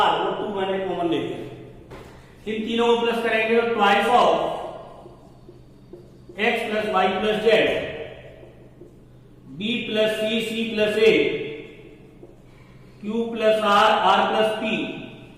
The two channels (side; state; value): both; identical; correlation 1.00